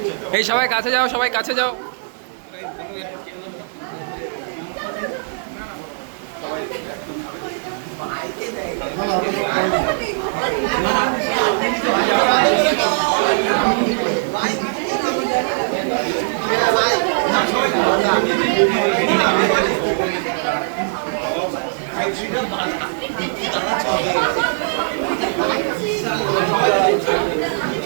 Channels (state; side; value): silent; left; digital silence